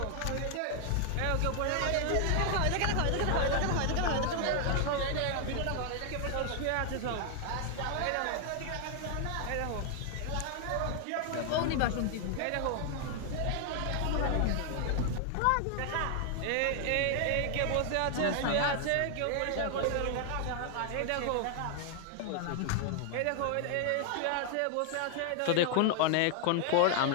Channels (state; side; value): different; both; correlation 0.00